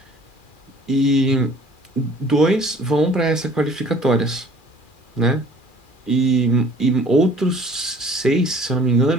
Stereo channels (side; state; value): right; late; 2.4 ms